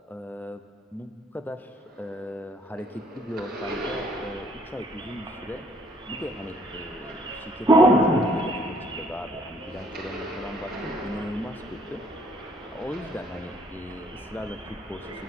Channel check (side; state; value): both; normal; correlation 0.62